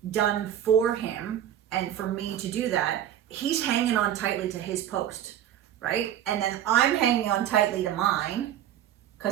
done for him and for me to do that, he's hanging on tightly to his post, right? And then I'm hanging on tightly to mine,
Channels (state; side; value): quieter; left; 10.8 dB